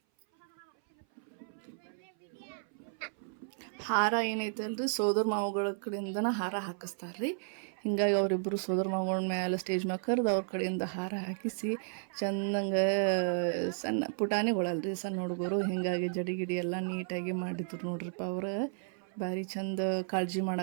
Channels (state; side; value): silent; left; 55 dB below the other